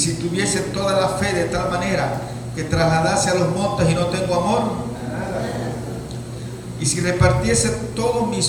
tuviese toda la fe de tal manera que trasladase a los montes y no tengo amor, y si repartiese todos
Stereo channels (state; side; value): identical; both; correlation 1.00